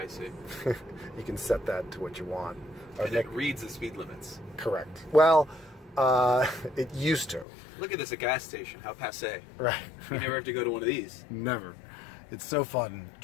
see. You can set that to what you want. And it reads the speed limits. Correct. Well, it used to. Look at this, a gas station. How passé. Right. You never have to go to one of these. Never. It's so fun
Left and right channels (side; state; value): right; drops out; at 7.5 s